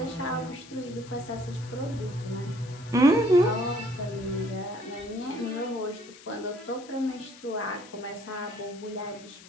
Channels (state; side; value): noise; left; hiss, 19 dB below the sound